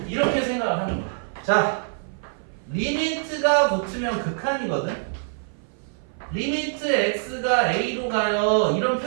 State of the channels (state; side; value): silent; left; 56 dB below the other